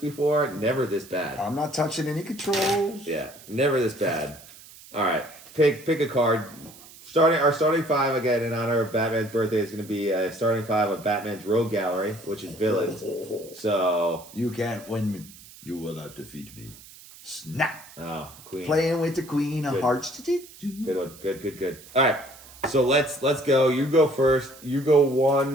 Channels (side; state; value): right; noise; hiss, 20 dB below the sound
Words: Never this bad. I'm not touching any controls. Yeah, never this bad. All right, pick a card. Our starting five again in honor of Batman's birthday is going to be a starting five of Batman's Rogue Gallery, which is villains. So You can't win me. You will not defeat me. Snap. oh, Queen. Playing with the Queen of Good. Hearts. Good one. Good. All right. So let's go. You go first. You go